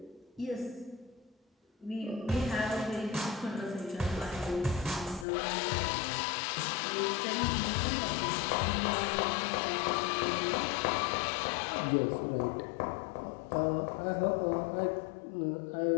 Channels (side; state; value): right; drops out; at 5.2 s